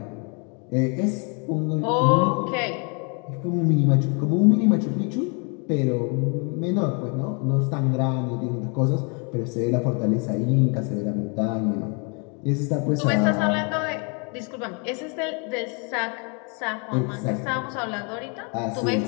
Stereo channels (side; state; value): right; quieter; 35.6 dB